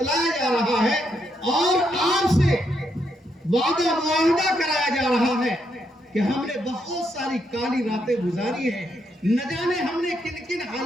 جا رہا ہے، اور آپ سے وعدہ معاہدہ کرایا جا رہا ہے کہ ہم نے بہت ساری کالی راتیں گزاری ہیں. نہ جانے ہم نے کن کن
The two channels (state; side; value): normal; both; correlation 0.78